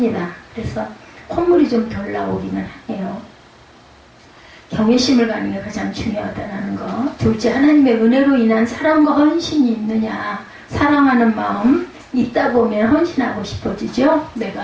그래서 콧물이 좀 덜 나오기는 해요. 경외심을 갖는 게 가장 중요하다는 거. 둘째, 하나님의 은혜로 인한 사랑과 헌신이 있느냐. 사랑하는 마음 있다 보면 헌신하고 싶어지죠.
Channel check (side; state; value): both; identical; correlation 1.00